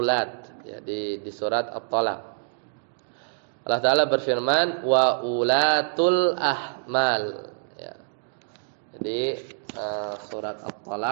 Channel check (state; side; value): silent; left; digital silence